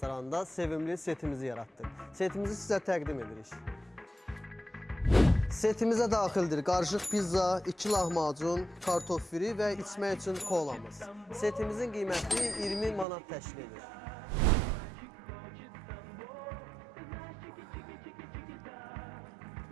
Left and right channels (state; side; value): drops out; left; at 13.1 s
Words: sevimli setimizi yaratdıq. Setimizi sizə təqdim edirik. Setimizə daxildir qarışıq pizza, 2 lahmacun, kartof firi və içmək üçün kolamız. Setimizin qiyməti 20 manat təşkil edir.